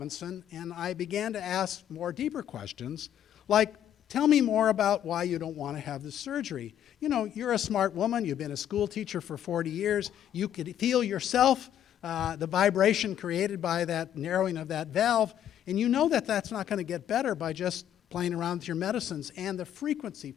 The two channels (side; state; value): right; quieter; 10.5 dB